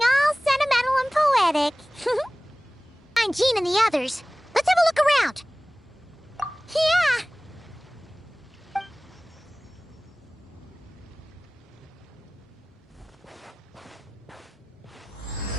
all sentimental and poetic. I'm Jean and the others. Let's have a look around. Yeah!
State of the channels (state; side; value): normal; both; correlation 0.98